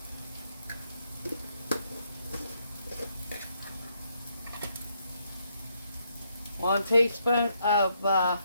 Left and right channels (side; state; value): both; inverted; correlation -0.75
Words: 1 teaspoon of